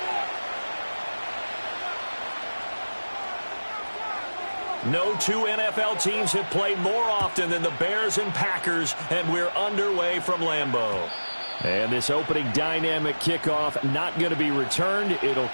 No two NFL teams have played more often than the Bears and Packers, and we're underway from Lambeau. And this opening dynamic kickoff not going to be returned. It'll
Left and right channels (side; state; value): both; inverted; correlation -1.00